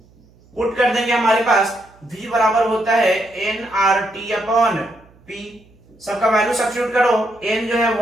पुट कर देंगे, हमारे पास V बराबर होता है nRT अपॉन P। सबका वैल्यू सब्स्टिट्यूट करो, n जो है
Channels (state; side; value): noise; right; hum, 29 dB below the sound